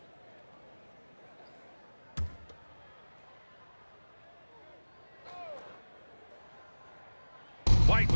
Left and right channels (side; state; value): both; inverted; correlation -1.00